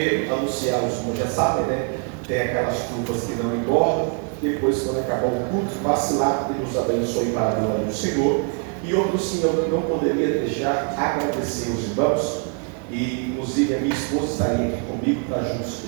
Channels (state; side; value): quieter; left; 37.4 dB